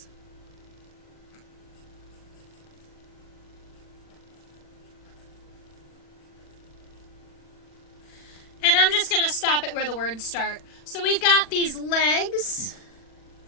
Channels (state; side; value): late; right; 40 ms